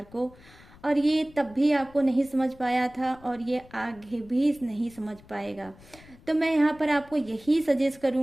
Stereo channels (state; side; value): noise; left; rumble, 24 dB below the sound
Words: को, और ये तब भी आपको नहीं समझ पाया था, और ये आगे भी नहीं समझ पाएगा। तो मैं यहाँ पर आपको यही सजेस्ट